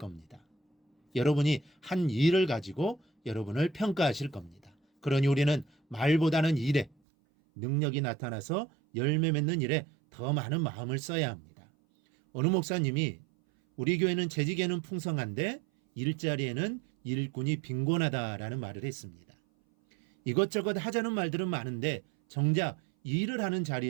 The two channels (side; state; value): left; drops out; at 7.0 s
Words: 여러분이 한 일을 가지고 여러분을 평가하실 겁니다. 그러니 우리는 말보다는 일에 능력이 나타나서 열매 맺는 일에 더 많은 마음을 써야 합니다. 어느 목사님이 우리 교회는 재직에는 풍성한데 일자리에는 일꾼이 빈곤하다라는 말을 했습니다. 이것저것 하자는 말들은 많은데 정작 일을 하는